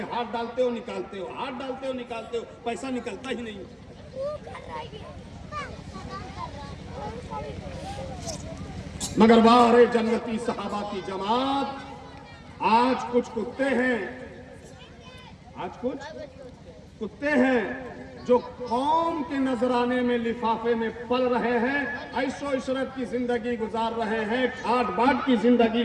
हाथ डालते हो, निकालते हो, हाथ डालते हो, निकालते हो, पैसा निकलता ही नहीं। मगर वारे जन्नती सहाबा की जमात, आज कुछ कुत्ते हैं, आज कुछ कुत्ते हैं जो कौम के नजराने में लिफाफे में पल रहे हैं, ऐशो इशरत की जिंदगी गुजार रहे हैं, ठाट बाट की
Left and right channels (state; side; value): identical; both; correlation 1.00